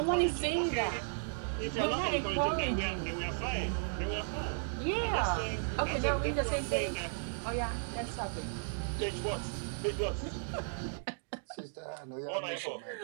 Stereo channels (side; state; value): left; silent; digital silence